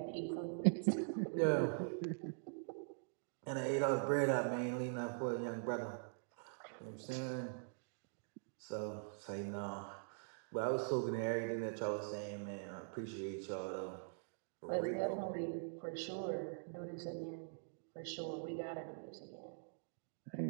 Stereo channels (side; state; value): left; silent; digital silence